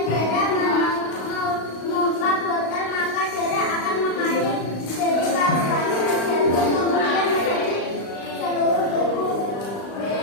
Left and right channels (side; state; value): right; late; 35 ms